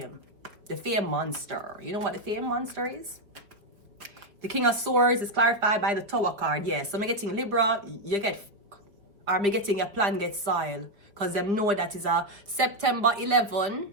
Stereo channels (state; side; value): late; left; 5.0 ms